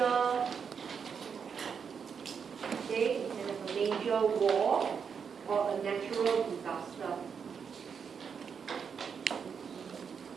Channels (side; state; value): left; quieter; 6.6 dB